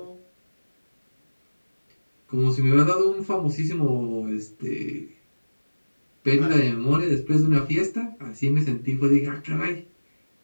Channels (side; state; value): both; inverted; correlation -1.00